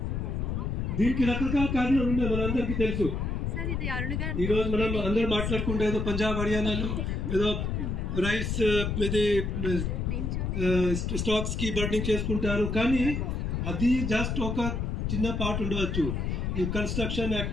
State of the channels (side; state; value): left; noise; rumble, 1 dB below the sound